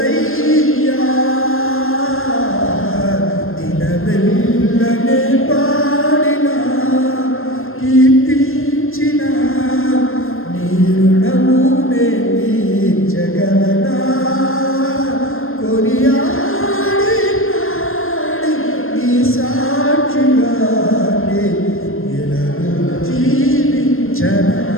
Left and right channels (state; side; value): late; right; 0.60 ms